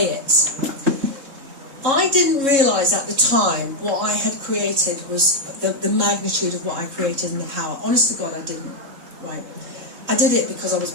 it. I didn't realise at the time what I had created was the magnitude of what I created and the power. Honest to God, I didn't, right? I did it because I was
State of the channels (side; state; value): left; late; 3.6 ms